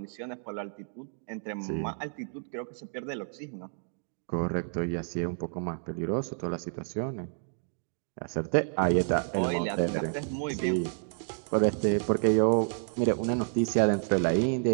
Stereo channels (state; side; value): silent; left; digital silence